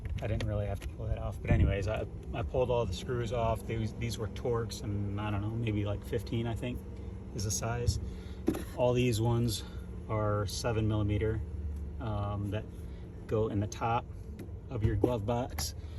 I didn't really have to pull that off, but anyways, I pulled all the screws off. These were Torx, and I don't know, maybe like 15, I think is the size. All these ones are 7mm that go in the top of your glove box.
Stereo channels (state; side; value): identical; both; correlation 1.00